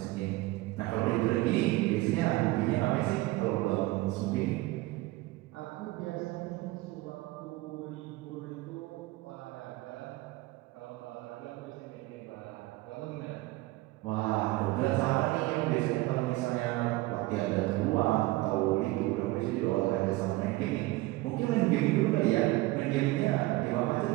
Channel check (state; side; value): quieter; left; 19.6 dB